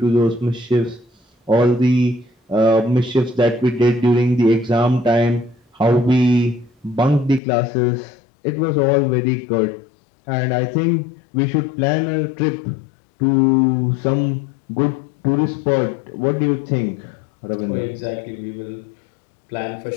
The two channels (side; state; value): right; drops out; at 7.4 s